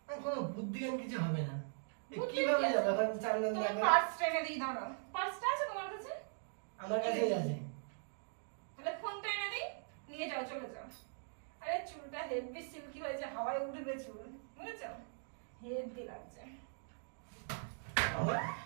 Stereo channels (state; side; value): silent; left; digital silence